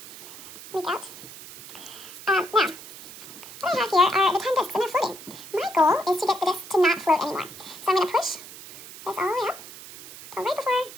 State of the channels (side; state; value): right; noise; hiss, 15 dB below the sound